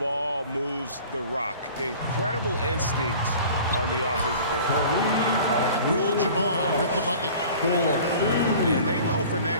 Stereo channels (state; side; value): inverted; both; correlation -0.44